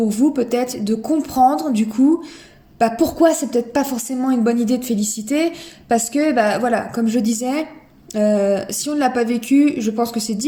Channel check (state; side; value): identical; both; correlation 1.00